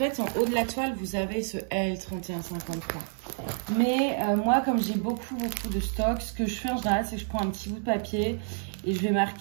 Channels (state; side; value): silent; left; 59 dB below the other